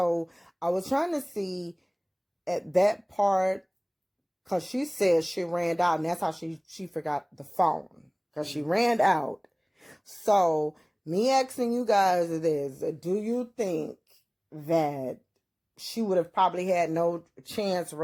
I was trying to see at that part, because she said she ran out, and that's how she forgot the phone, because she ran out. So me asking you guys is, do you think that she would have probably had no chance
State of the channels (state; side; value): identical; both; correlation 1.00